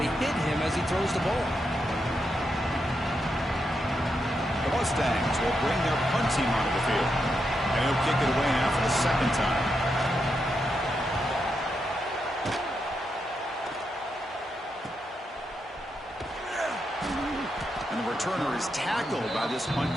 hit him as he throws the ball. The Mustangs will bring their punt team onto the field. And he'll kick it away now for the second time. And the returner is tackled by this punt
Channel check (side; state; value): both; normal; correlation 0.84